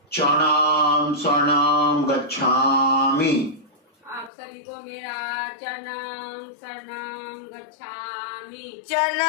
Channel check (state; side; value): drops out; right; at 4.3 s